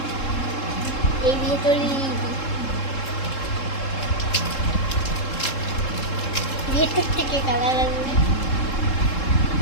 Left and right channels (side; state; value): right; late; 3.7 ms